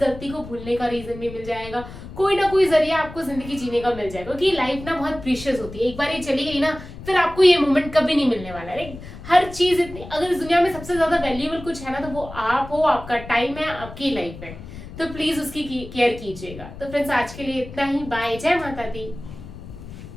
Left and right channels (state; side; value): noise; left; rumble, 14 dB below the sound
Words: को भूलने का रीजन भी मिल जाएगा, कोई ना कोई जरिया आपको जिंदगी जीने का मिल जाएगा। क्योंकि लाइफ ना बहुत प्रीशियस होती है, एक बार ये चली गई ना फिर आपको ये मोमेंट कभी नहीं मिलने वाला है। हर चीज इतनी, अगर इस दुनिया में सबसे ज्यादा वैल्यूएबल कुछ है ना तो वो आप हो, आपका टाइम है, आपकी लाइफ है। तो प्लीज उसकी केयर कीजिएगा। तो फ्रेंड्स, आज के लिए इतना ही। बाय, जय माता दी।